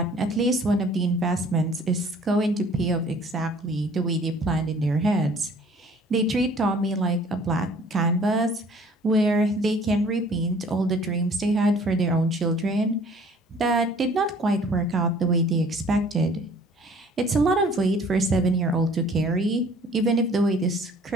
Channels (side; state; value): both; normal; correlation 0.53